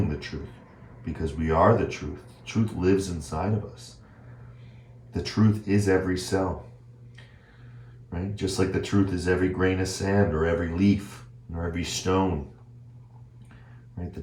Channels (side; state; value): both; identical; correlation 1.00